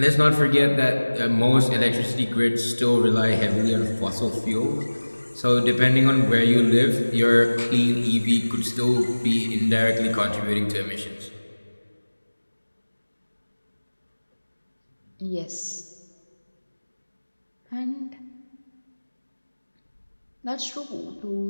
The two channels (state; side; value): inverted; both; correlation -1.00